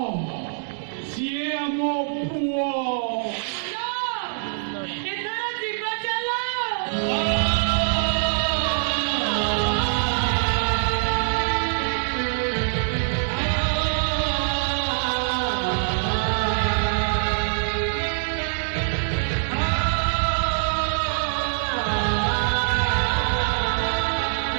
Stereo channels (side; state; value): left; silent; digital silence